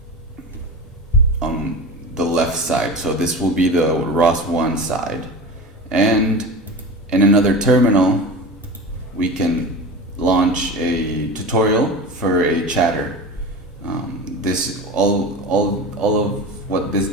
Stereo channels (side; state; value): both; normal; correlation 0.30